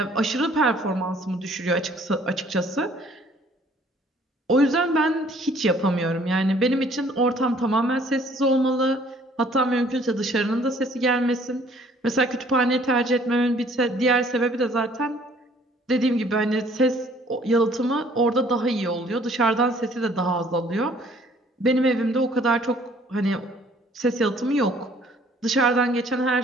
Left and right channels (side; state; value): both; normal; correlation 0.58